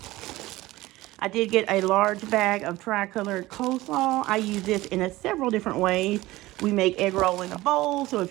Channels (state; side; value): quieter; left; 18.3 dB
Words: I did get a large bag of tri-colored coleslaw. I use this in several different ways. We make egg roll in a bowl, so if